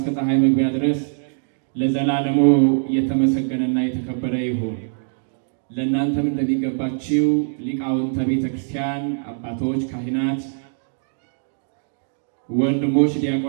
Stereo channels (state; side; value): silent; left; digital silence